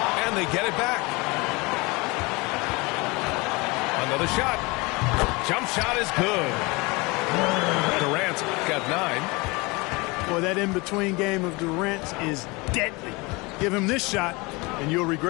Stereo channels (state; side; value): quieter; right; 25.5 dB